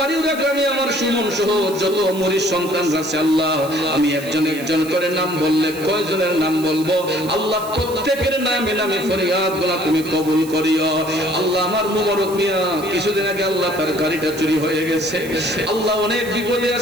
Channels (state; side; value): noise; right; hiss, 15 dB below the sound